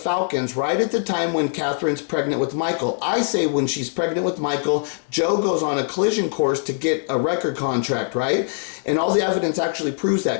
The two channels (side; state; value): right; silent; digital silence